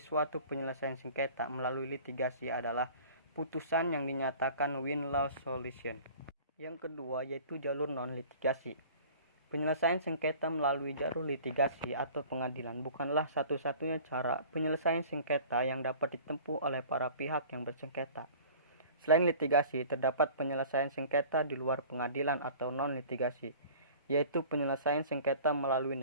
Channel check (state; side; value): inverted; both; correlation -0.45